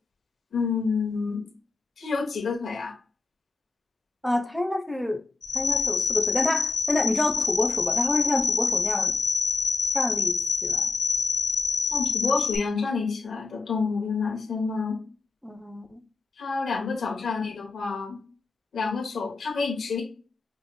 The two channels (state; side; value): quieter; right; 3.8 dB